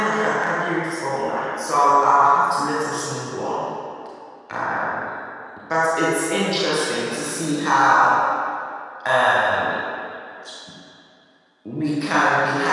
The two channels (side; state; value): both; identical; correlation 1.00